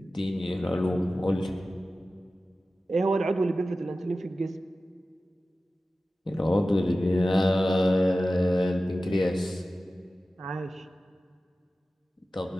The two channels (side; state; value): both; normal; correlation 0.95